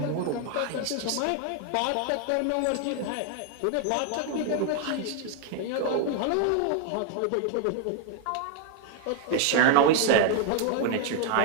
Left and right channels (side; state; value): both; different; correlation 0.00